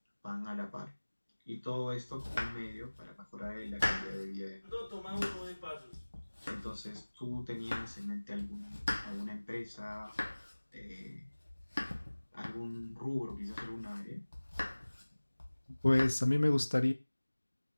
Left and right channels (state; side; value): inverted; both; correlation -1.00